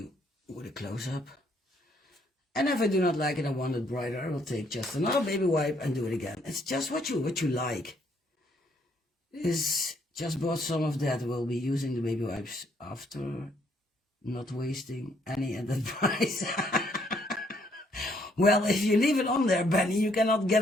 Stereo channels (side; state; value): both; normal; correlation 0.69